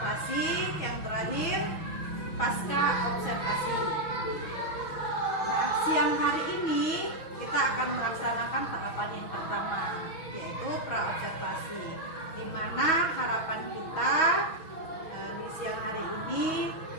yang terakhir pasca observasi. Nah, siang hari ini kita akan melaksanakan tahapan yang pertama, yaitu pra-observasi, di mana harapan kita di siang hari ini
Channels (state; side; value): late; right; 6.2 ms